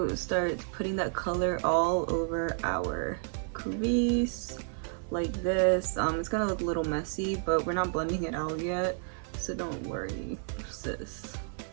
start putting that color all over our crease like this. It's gonna look a little messy, but we're not blending it out yet, so don't worry, sis.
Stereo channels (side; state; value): left; silent; 57 dB below the other